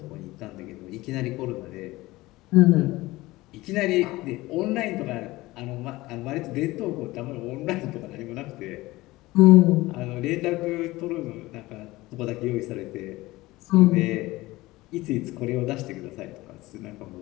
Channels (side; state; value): right; quieter; 19.3 dB